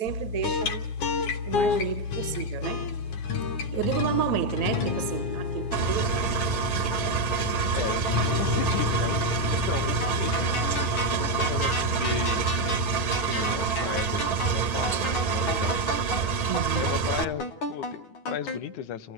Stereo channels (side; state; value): right; late; 9.1 ms